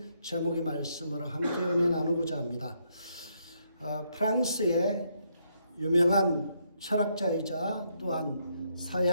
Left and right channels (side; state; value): both; inverted; correlation -0.75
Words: 제목의 말씀으로 함께 은혜 나누고자 합니다. 프랑스의 유명한 철학자이자 또한